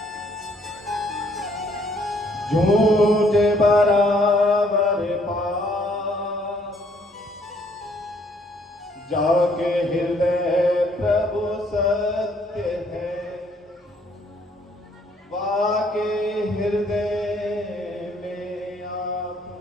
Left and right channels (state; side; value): normal; both; correlation 0.65